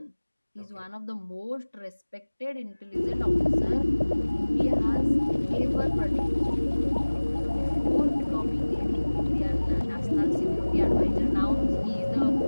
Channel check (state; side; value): inverted; both; correlation -1.00